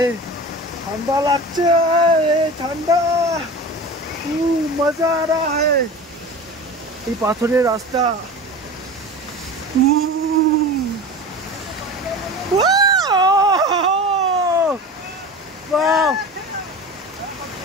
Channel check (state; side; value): normal; both; correlation 0.33